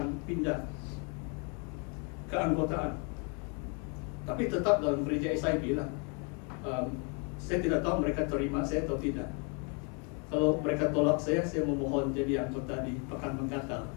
pindah keanggotaan. Tapi tetap dalam gereja SIB lah. Saya tidak tahu mereka terima saya atau tidak. Kalau mereka tolak saya memohon jadi anggota di Pekan Menggatal.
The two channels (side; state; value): right; quieter; 34.4 dB